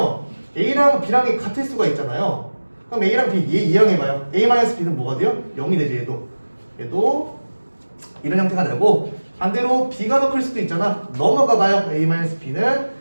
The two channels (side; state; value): both; inverted; correlation -1.00